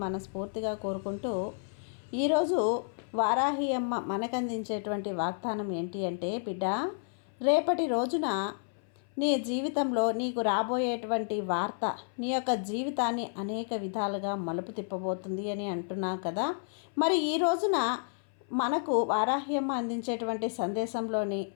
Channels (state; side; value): silent; right; 57 dB below the other